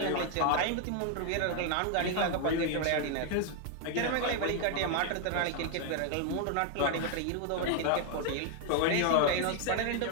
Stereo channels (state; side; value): different; both; correlation 0.00